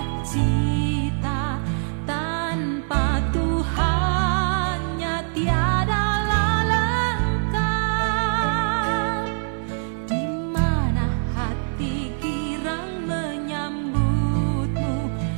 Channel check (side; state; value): left; silent; digital silence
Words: Tanpa Tuhannya tiadalah lengkap.